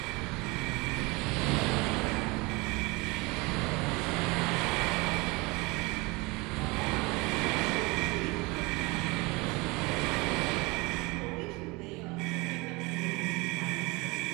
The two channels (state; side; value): quieter; left; 25.3 dB